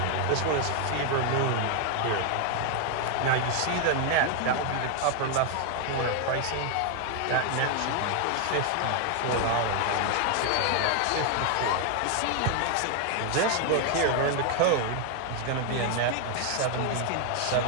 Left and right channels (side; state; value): both; different; correlation 0.01